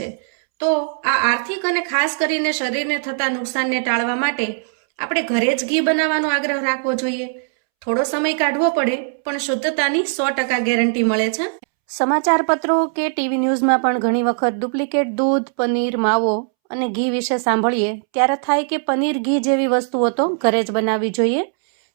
તો આ આર્થિક અને ખાસ કરીને શરીરને થતા નુકસાનને ટાળવા માટે આપણે ઘરે જ ઘી બનાવવાનો આગ્રહ રાખવો જોઈએ. થોડો સમય કાઢવો પડે, પણ શુદ્ધતાની 100% ગેરંટી મળે છે. સમાચાર પત્રો કે ટીવી ન્યૂઝમાં પણ ઘણી વખત ડુપ્લિકેટ દૂધ, પનીર, માવો અને ઘી વિશે સાંભળીએ ત્યારે થાય કે પનીર, ઘી જેવી વસ્તુઓ તો ઘરે જ બનાવવી જોઈએ,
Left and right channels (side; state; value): left; silent; 66 dB below the other